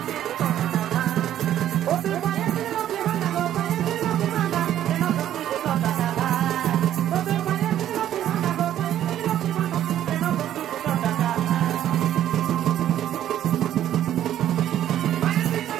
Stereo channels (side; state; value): left; quieter; 11.5 dB